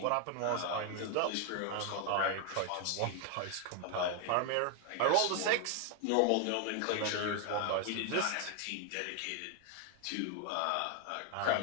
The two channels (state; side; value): different; both; correlation 0.01